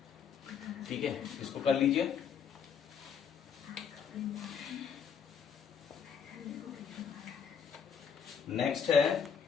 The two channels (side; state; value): right; quieter; 7.1 dB